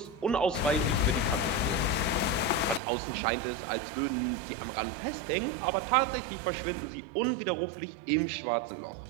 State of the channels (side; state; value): left; drops out; at 2.8 s